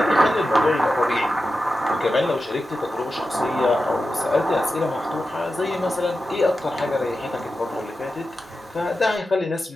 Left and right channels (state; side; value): normal; both; correlation 0.91